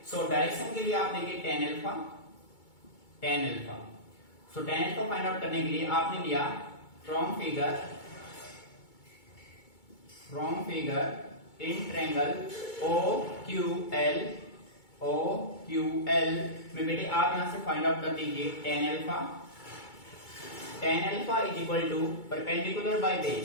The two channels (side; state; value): right; late; 2.2 ms